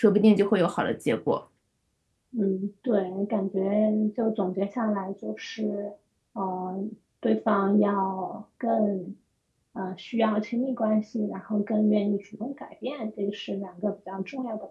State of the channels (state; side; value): identical; both; correlation 1.00